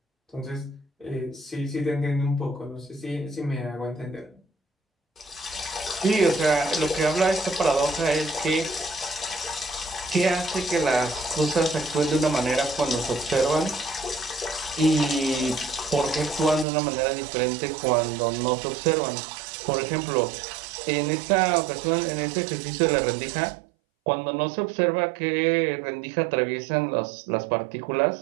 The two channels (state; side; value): drops out; left; at 16.7 s